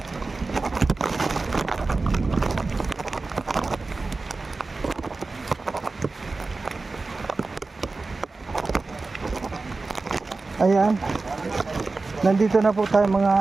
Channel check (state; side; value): quieter; left; 3.7 dB